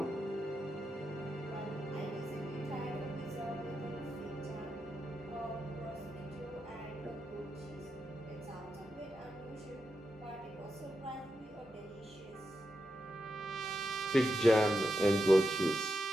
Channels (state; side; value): normal; both; correlation 0.87